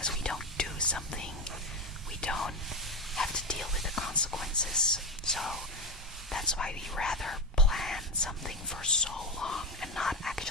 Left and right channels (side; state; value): both; normal; correlation 0.15